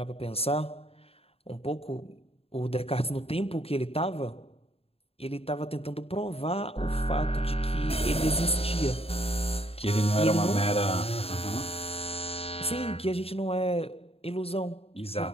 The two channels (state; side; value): late; right; 0.28 ms